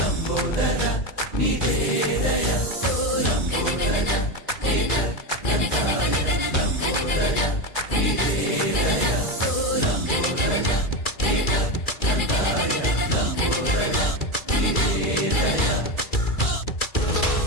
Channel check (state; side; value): late; right; 2.3 ms